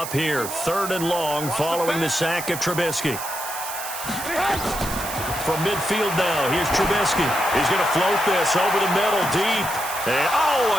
here. 3rd and long following the sack of Trubisky. From midfield now, here's Trubisky. He's going to float this over the middle, deep. And,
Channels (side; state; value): right; noise; hiss, 8 dB below the sound